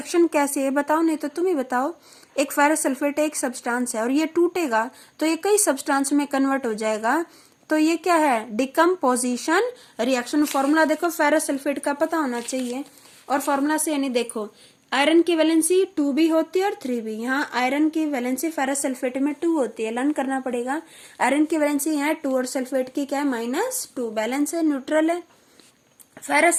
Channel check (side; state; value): both; identical; correlation 1.00